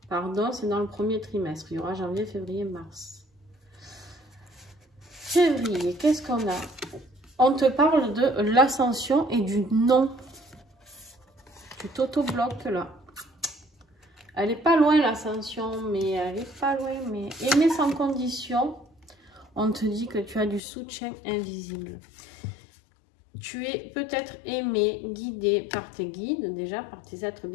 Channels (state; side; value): drops out; right; at 20.6 s